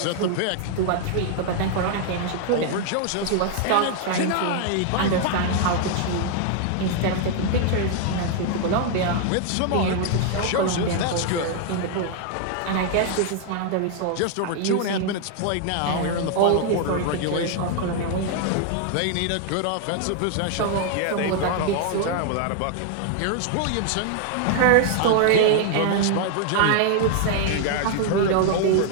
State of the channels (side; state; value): both; different; correlation 0.00